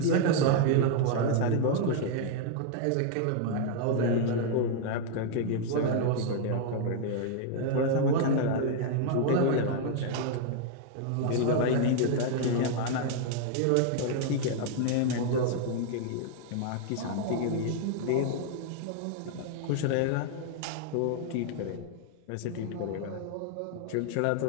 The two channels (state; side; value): different; both; correlation 0.00